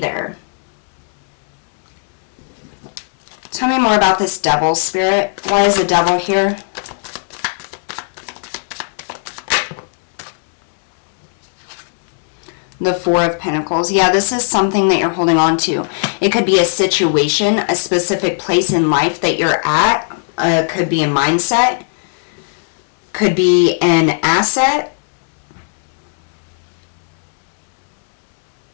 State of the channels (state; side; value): silent; right; digital silence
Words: Tell me more about this Devil, Spirit. Why is the Devil here? The Four of Pentacles. Yeah, this is something that you're holding on to. It could be a situation, a specific place in life that you're at. Could be a mindset. Could be an asset.